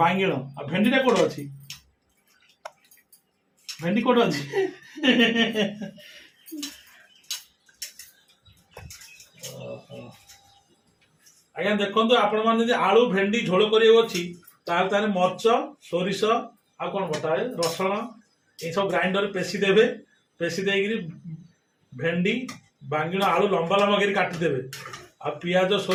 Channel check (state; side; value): identical; both; correlation 1.00